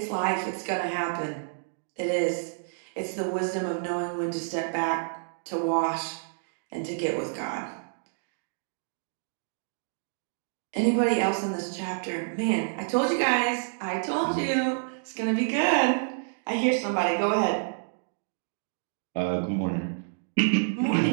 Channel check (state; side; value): silent; left; digital silence